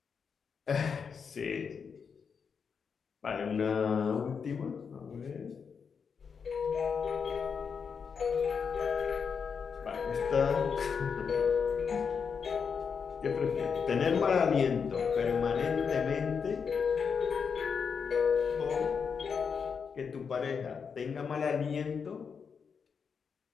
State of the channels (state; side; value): quieter; right; 6.2 dB